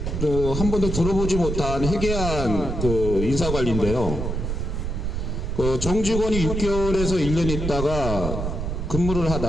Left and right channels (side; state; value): right; noise; rumble, 3 dB below the sound